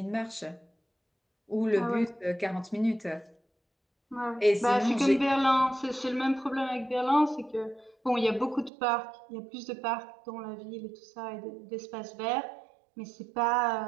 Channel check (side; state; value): left; drops out; at 8.7 s